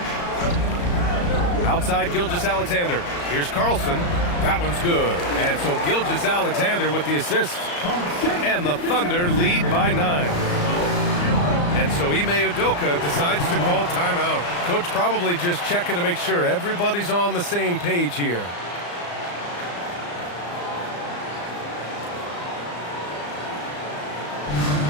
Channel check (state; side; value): late; right; 34 ms